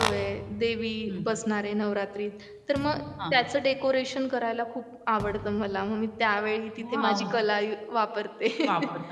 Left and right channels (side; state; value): both; identical; correlation 1.00